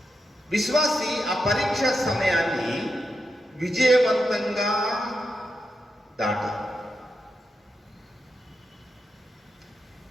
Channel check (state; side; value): normal; both; correlation 0.86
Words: విశ్వాసి ఆ పరీక్ష సమయాన్ని విజయవంతంగా దాటాలి.